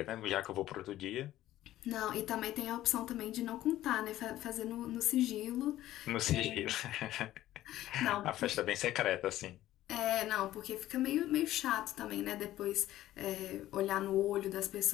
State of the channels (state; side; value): quieter; right; 14.2 dB